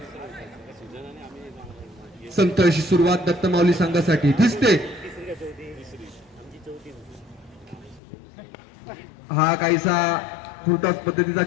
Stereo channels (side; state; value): right; drops out; at 8.0 s